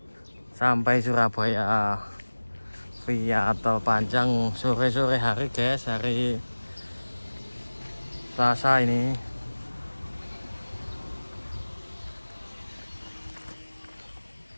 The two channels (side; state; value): both; inverted; correlation -1.00